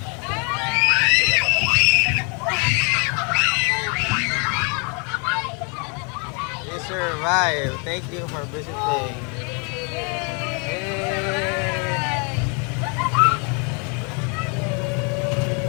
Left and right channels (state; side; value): quieter; right; 35.3 dB